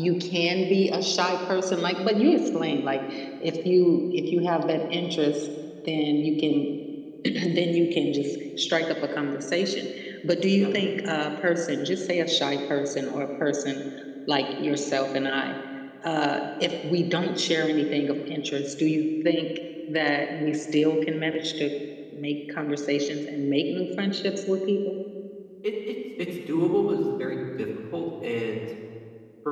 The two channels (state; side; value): identical; both; correlation 1.00